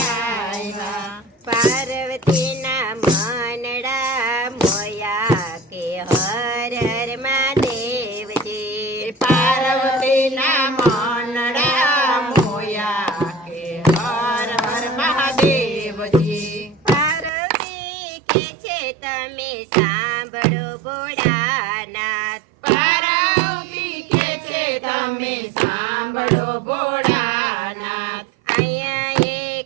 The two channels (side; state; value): left; drops out; at 17.3 s